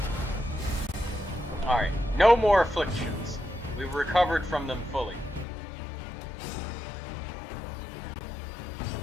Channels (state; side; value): drops out; right; at 5.5 s